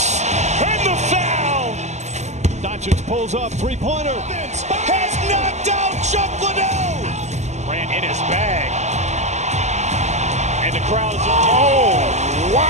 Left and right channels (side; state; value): left; late; 0.33 ms